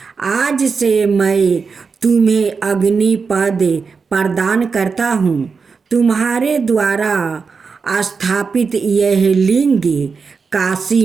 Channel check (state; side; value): quieter; left; 5.2 dB